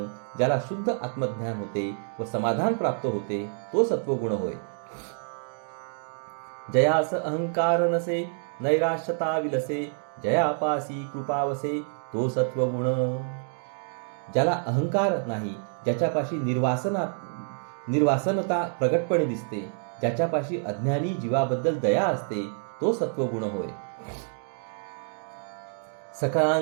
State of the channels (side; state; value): left; silent; 60 dB below the other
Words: ज्याला शुद्ध आत्मज्ञान होते व समाधान प्राप्त होते तो सत्वगुण होय. जयास अहंकार नसे, नैराश्यता विलसे, जयापासी कृपावसे तो सत्वगुण. ज्याला अहंकार नाही, ज्याच्यापाशी निर्वासनता प्रगटपणे दिसते, ज्याच्यापाशी अज्ञानी जीवाबद्दल दया असते तो सत्वगुण होय.